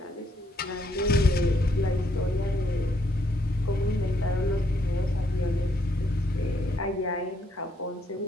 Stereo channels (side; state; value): both; normal; correlation 0.73